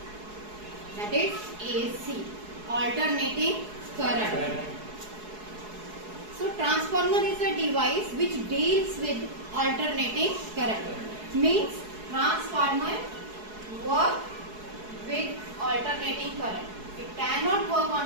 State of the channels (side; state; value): left; late; 4.7 ms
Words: That is AC, alternating current. So transformer is a device which deals with alternating current. Means transformer work with alternating current. It cannot work